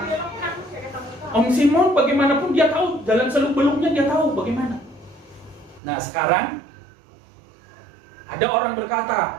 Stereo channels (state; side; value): drops out; left; at 5.8 s